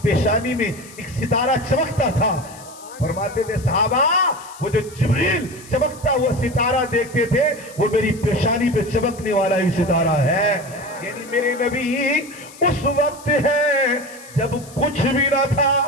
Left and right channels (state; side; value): noise; left; hiss, 20 dB below the sound